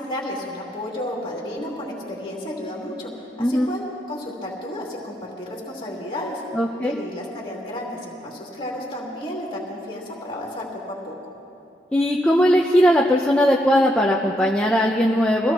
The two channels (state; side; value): normal; both; correlation 0.78